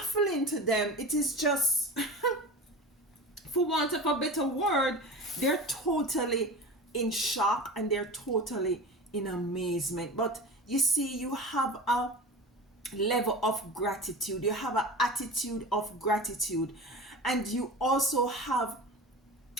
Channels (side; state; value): both; normal; correlation 0.32